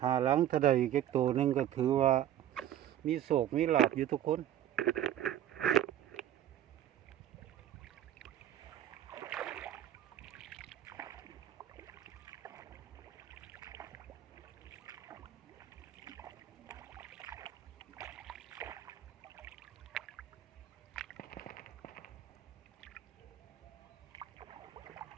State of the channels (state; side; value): quieter; left; 11.5 dB